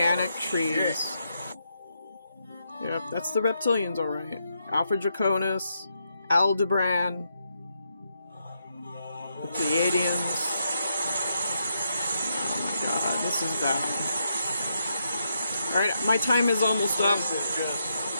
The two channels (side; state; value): both; inverted; correlation -0.80